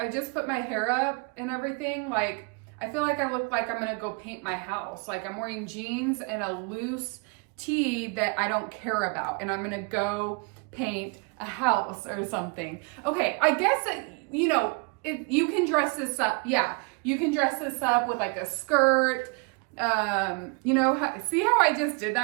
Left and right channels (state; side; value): quieter; left; 31.8 dB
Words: just put my hair up and everything. Like, I feel like I look like I'm gonna go paint my house. Like, I'm wearing jeans and a loose tee that I don't care about, and I'm gonna go paint a house or something. Okay, I guess that, you know, if you can dress this up, yeah, you can dress this up with like a skirt. You know, see how I just did